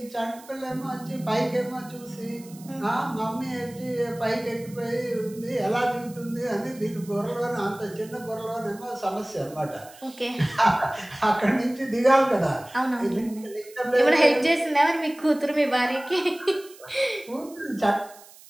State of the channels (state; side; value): noise; right; hiss, 21 dB below the sound